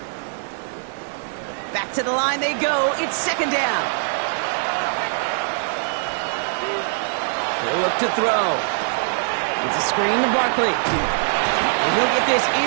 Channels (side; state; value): left; silent; digital silence